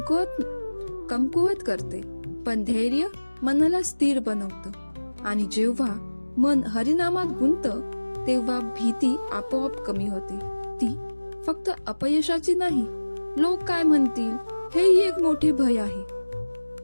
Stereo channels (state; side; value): inverted; both; correlation -1.00